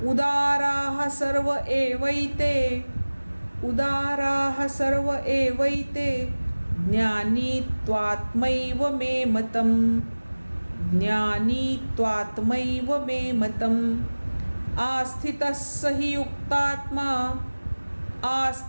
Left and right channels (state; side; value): inverted; both; correlation -1.00